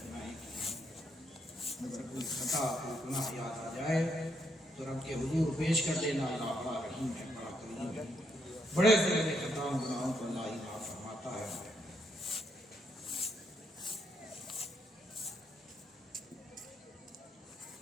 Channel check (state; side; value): normal; both; correlation 0.76